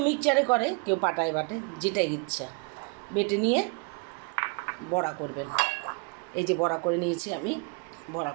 মিক্সচারে করে, কেউ পাটায় বাটে, যেটাই ইচ্ছা। বেটে নিয়ে বড়া করবেন। এই যে বড়া করে নিয়েছি আমি, বড়া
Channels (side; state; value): left; quieter; 33.4 dB